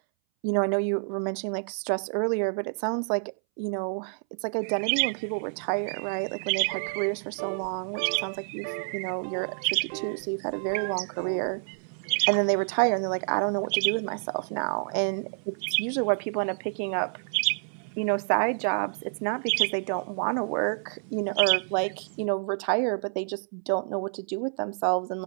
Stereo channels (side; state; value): left; silent; 59 dB below the other